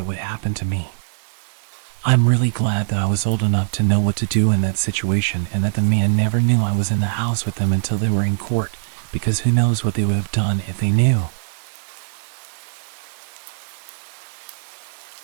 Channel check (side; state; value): left; silent; 63 dB below the other